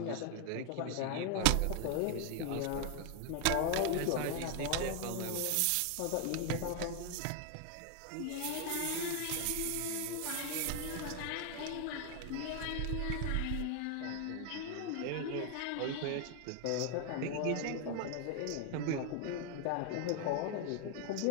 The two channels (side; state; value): both; different; correlation 0.01